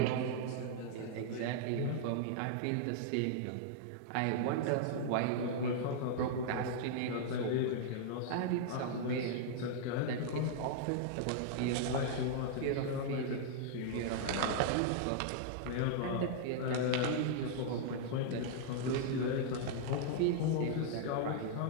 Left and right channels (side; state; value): both; different; correlation -0.01